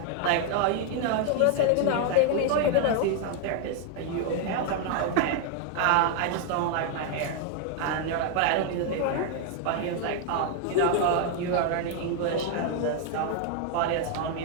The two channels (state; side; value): different; both; correlation 0.00